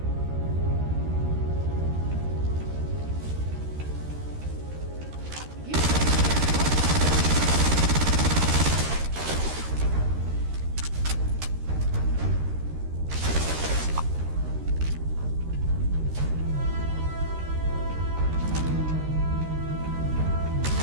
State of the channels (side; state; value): left; late; 13 ms